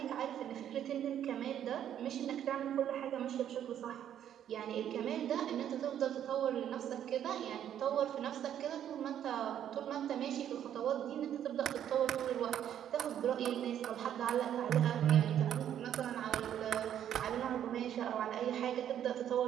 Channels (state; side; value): quieter; left; 10.2 dB